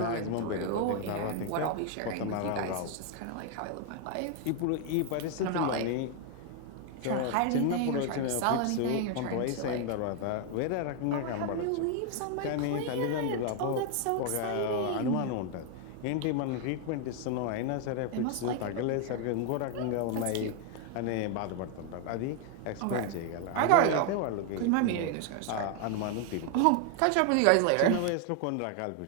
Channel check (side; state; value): both; different; correlation 0.00